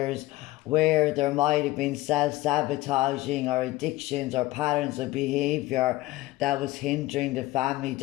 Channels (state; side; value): quieter; right; 18.0 dB